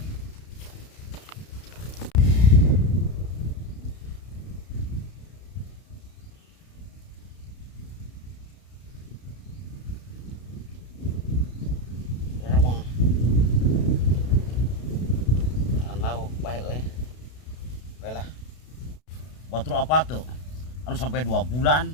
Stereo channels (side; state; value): right; late; 32 ms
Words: Batur apa tuh? Anu sampai 2 bulan